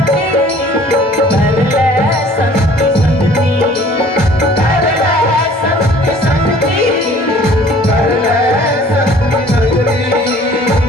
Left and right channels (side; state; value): both; normal; correlation 0.52